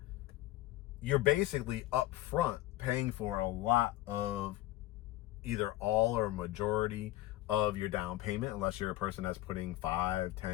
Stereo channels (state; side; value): quieter; right; 16.2 dB